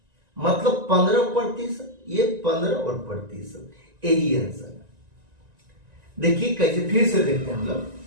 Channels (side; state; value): left; late; 1.9 ms